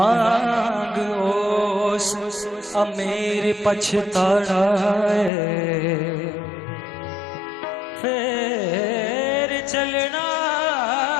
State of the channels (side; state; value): right; drops out; at 5.3 s